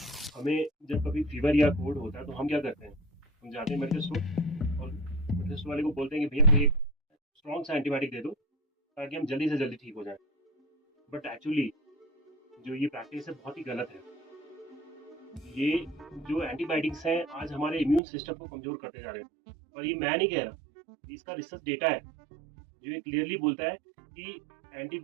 हमें जब कभी फीवर या कोल्ड होता है तो हम क्या करते हैं, हम जाते हैं मेडिकल स्टोर और मेडिकल स्टोर वाले को बोलते हैं कि भैया कोई एक स्ट्रॉन्ग सा एंटीबायोटिक दे दो ताकि हम जल्दी से जल्दी ठीक हो जाएं। बट एक्चुअली जो ये प्रैक्टिस है बहुत ही गलत है। ये जो एंटीबायोटिक्स हैं आज हमारे इम्यून सिस्टम को कमजोर करते जा रहे हैं। और ये मैं नहीं कह रहा, इसका रिसर्च डेटा है जो ये क्लियरली बोलता है कि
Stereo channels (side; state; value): left; drops out; at 18.0 s